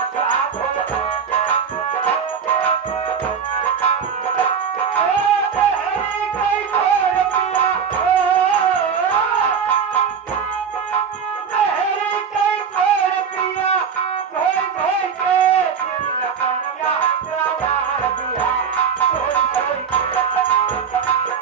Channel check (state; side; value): quieter; left; 6.7 dB